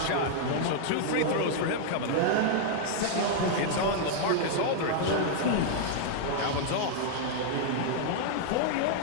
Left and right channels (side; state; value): both; different; correlation -0.01